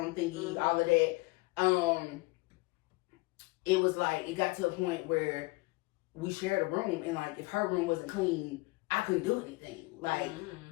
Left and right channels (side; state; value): right; quieter; 24.4 dB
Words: thingy, all of that, it was like, it got to a point where we shared a room, and, like, if her room wasn't clean, I couldn't do anything. Like,